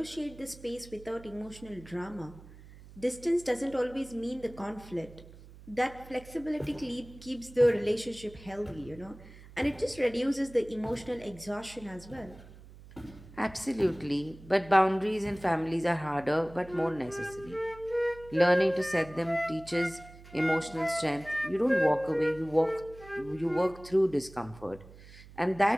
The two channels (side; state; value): right; noise; hum, 19 dB below the sound